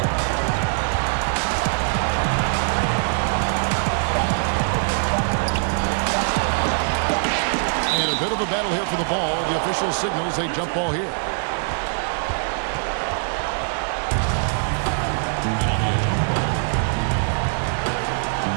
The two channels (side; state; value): left; silent; digital silence